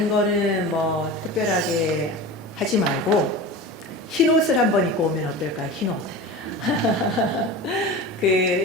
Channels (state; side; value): normal; both; correlation 0.31